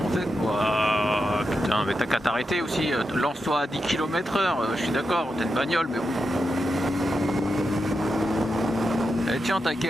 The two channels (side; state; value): both; normal; correlation 0.87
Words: en fait, putain, mais t'as qu'à t'arrêter aussi, lance-toi à 10 km/h, je suis d'accord, t'as une bagnole, mais bon. Et tiens ta